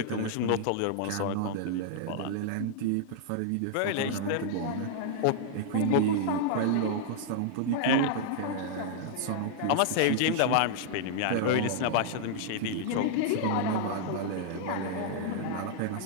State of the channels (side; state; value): both; different; correlation -0.01